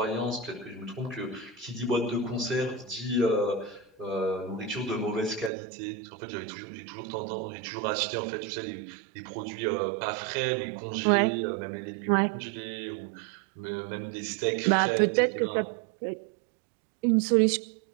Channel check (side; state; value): left; drops out; at 5.5 s